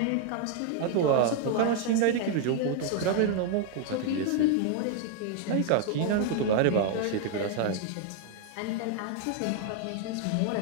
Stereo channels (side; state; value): both; different; correlation 0.01